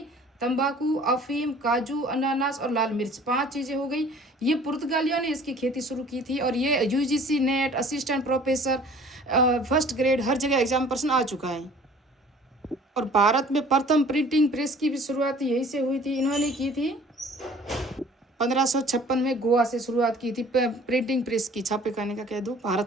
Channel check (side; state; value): both; normal; correlation 0.50